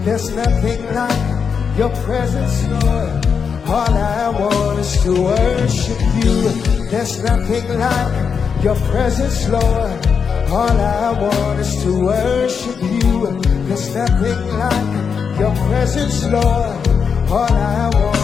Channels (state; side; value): quieter; right; 6.3 dB